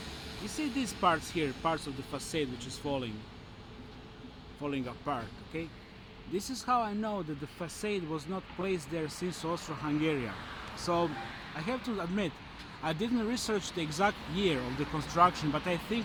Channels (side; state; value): both; identical; correlation 1.00